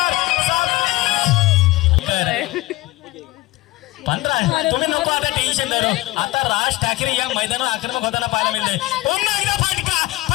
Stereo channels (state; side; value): quieter; right; 19.6 dB